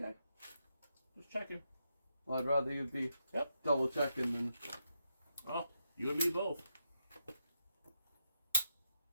Just checking. Well, I'd rather you be double checking than. Oh, you and me both.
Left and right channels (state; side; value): inverted; both; correlation -0.82